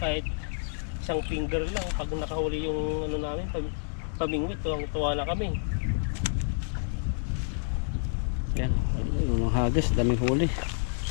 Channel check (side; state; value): right; silent; digital silence